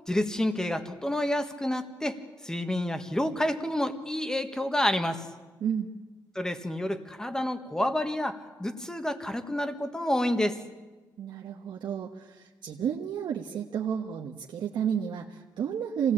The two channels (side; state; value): both; normal; correlation 0.84